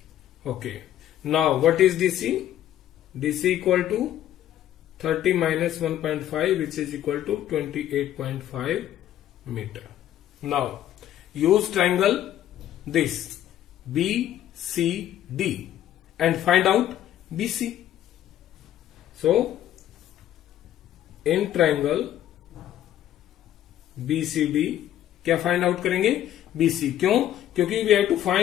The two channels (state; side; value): quieter; right; 12.0 dB